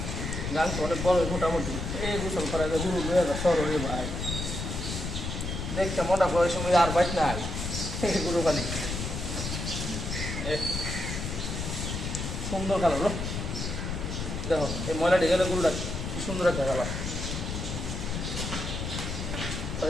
গাং তো অনেক বড় মোটামুটি এই গোসল করা গরু 2016 ভাই দেখতে মনে করে সময় আর বাইক নাই গরু খালি সুন্দর কালার দেখো এই ময়লা ঢেকে গরুটা কি সুন্দর একটা কালার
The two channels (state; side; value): noise; left; rumble, 4 dB below the sound